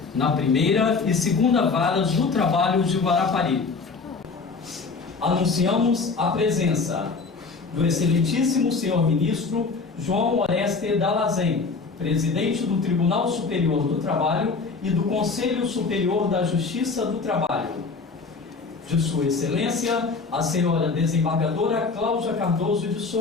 na primeira e segunda Varas do Trabalho de Guarapari. Anunciamos a presença do excelentíssimo senhor ministro João Oreste Dallazen, presidente do Tribunal Superior do Trabalho e do Conselho Superior da Justiça do Trabalho. De Sua Excelência, a senhora desembargadora Cláudia Cardoso de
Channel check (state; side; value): quieter; right; 4.5 dB